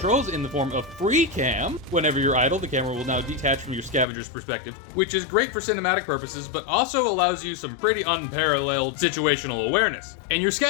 in the form of free cam. Whenever you're idle, the camera will now detach from your scavenger's perspective, which is great for cinematic purposes, but also allows you some pretty unparalleled situational awareness. And your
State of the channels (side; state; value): right; drops out; at 4.0 s